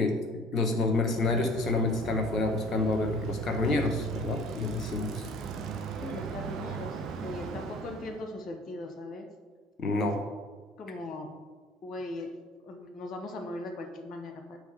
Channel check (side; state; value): both; normal; correlation 0.49